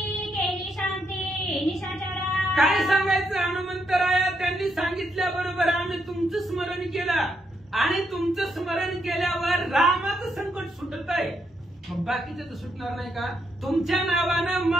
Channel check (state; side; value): normal; both; correlation 0.79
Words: काय सांगायचं हनुमंतराया, त्यांनी सांगितल्याबरोबर आम्ही तुमचं स्मरण केलं आणि तुमचं स्मरण केल्यावर रामाचं संकट सुटत आहे. मग बाकीचं तर सुटणार नाही का? तुमच्या नावानं